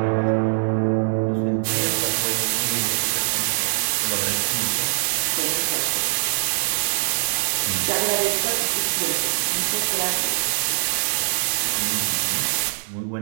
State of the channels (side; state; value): left; silent; digital silence